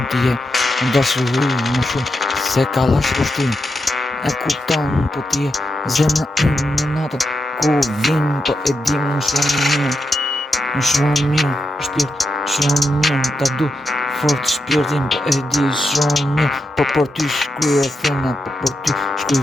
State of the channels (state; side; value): normal; both; correlation 0.85